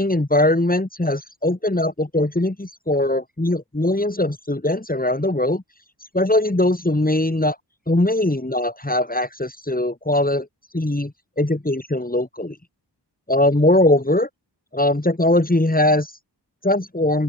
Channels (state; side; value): normal; both; correlation 0.42